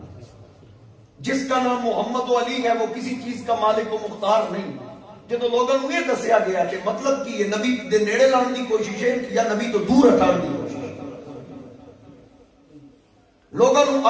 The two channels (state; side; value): identical; both; correlation 1.00